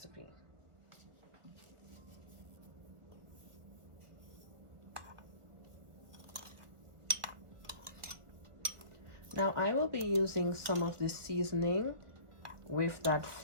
Now I will be using some of this seasoning with that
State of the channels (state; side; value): late; left; 1.4 ms